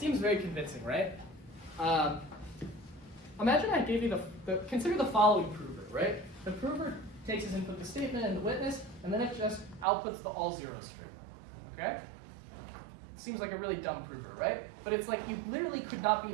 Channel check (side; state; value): left; drops out; at 9.9 s